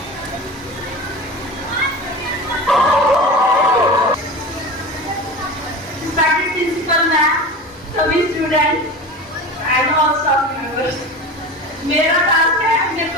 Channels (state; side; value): normal; both; correlation 0.31